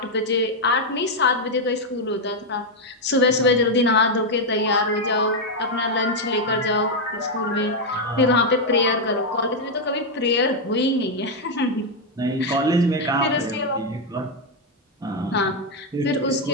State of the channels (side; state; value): both; normal; correlation 0.02